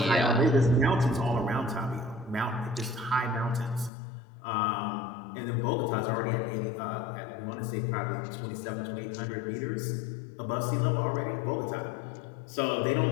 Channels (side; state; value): right; drops out; at 3.9 s